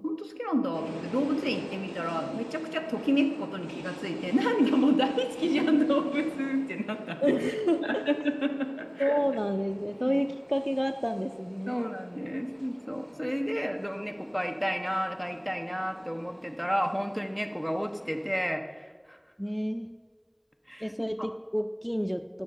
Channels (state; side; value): identical; both; correlation 1.00